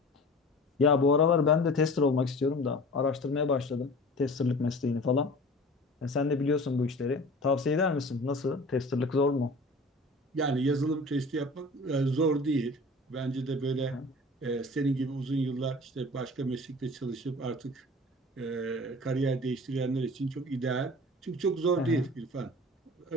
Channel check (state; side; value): normal; both; correlation 0.41